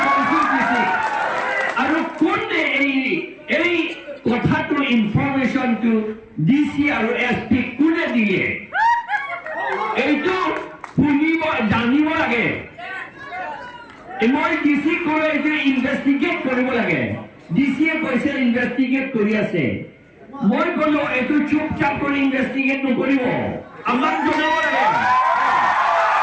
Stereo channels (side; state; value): both; identical; correlation 1.00